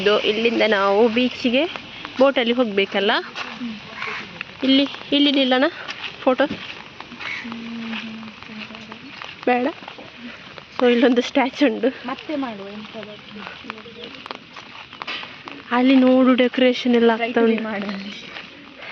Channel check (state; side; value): identical; both; correlation 1.00